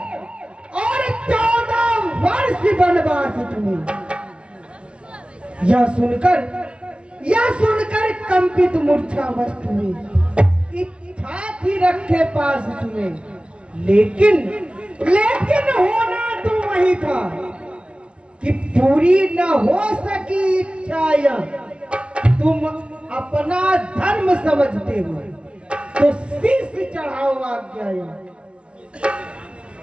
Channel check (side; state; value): left; late; 0.059 ms